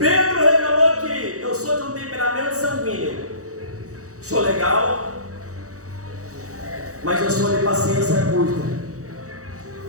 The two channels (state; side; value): late; left; 0.65 ms